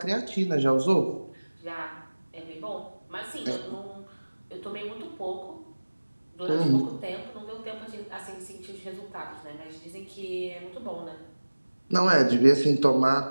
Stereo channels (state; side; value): inverted; both; correlation -1.00